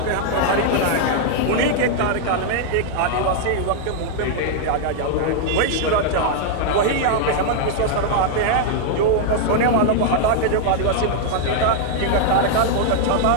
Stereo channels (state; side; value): different; both; correlation -0.01